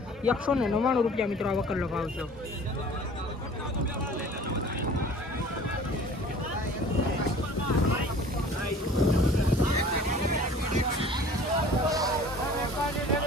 199 રૂપિયા મિત્રો આ વકલનો ભાવ છે.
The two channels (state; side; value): normal; both; correlation 0.47